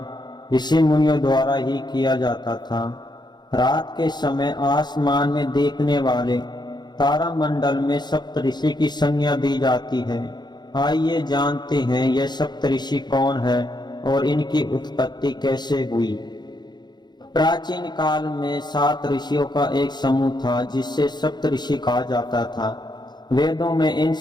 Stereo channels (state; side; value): late; right; 0.21 ms